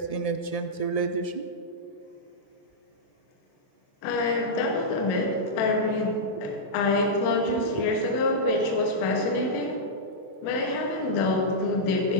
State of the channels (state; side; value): late; right; 1.7 ms